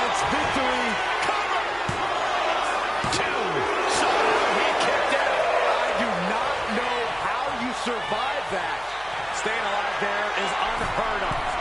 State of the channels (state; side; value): noise; left; hum, 24 dB below the sound